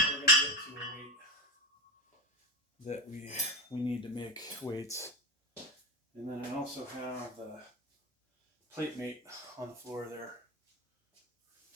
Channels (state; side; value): normal; both; correlation 0.20